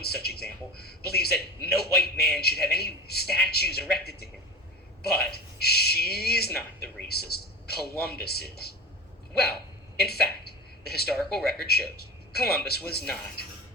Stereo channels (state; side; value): normal; both; correlation 0.31